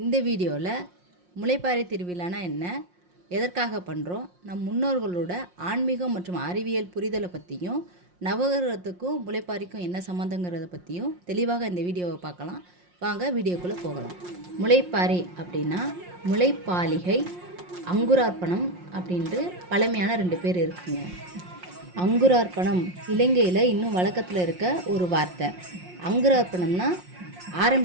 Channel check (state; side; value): late; left; 5.6 ms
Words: இந்த வீடியோவில் முளைப்பாரி திருவிழானா என்ன, எதற்காக பண்ணுறோம், நம் முன்னோர்களோட ஆன்மீகம் மற்றும் அறிவியல் புரிதலை பற்றியும் நவகிரகத்துக்கும் முளைப்பாரிக்கும் என்ன சம்மந்தங்கிறத பற்றியும் தெளிவாக இந்த வீடியோவை பார்க்கலாம். வாங்க வீடியோக்குள்ளே போகலாம். முளைப்பாரி அப்படின்னா முளைப்பாலிகை, அங்குரார்ப்பணம் அப்படின்ட்டு பழமையான 2 பேர் இருக்குங்க. அங்குரார்ப்பணம் இலங்கையில் இன்னும் வழக்கத்தில் இருக்க ஒரு வார்த்தை. அங்குரார்ப்பணம்னா